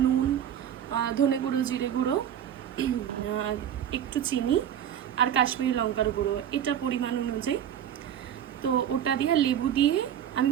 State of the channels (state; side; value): quieter; left; 9.8 dB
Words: নুন, ধনে গুঁড়ো, জিরে গুঁড়ো, একটু চিনি আর কাশ্মীরি লঙ্কার গুঁড়ো, এটা পরিমাণ অনুযায়ী। তো ওটা দিয়ে লেবু দিয়ে আমি